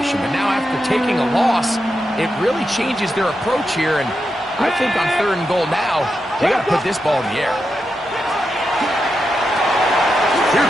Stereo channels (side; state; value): both; normal; correlation 0.87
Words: But now after taking a loss, it really changes their approach here. And I think on third and goal now, they got to put this ball in the air. Here